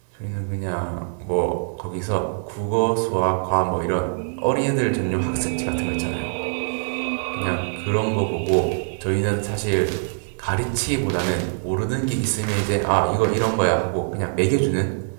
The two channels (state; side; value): silent; left; digital silence